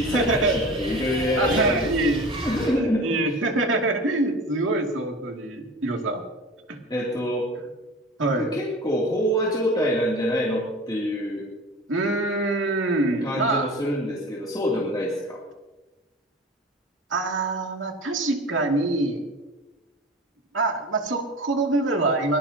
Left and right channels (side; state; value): both; normal; correlation 0.36